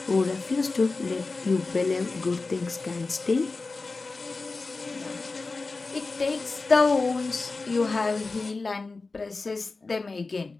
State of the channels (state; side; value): quieter; right; 3.8 dB